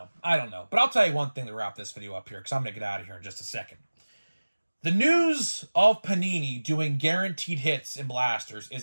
But I'll tell you one thing to wrap this video up here, because I'm going to get out of here in just a second. The news of Panini doing guaranteed hits in blasters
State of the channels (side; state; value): both; inverted; correlation -1.00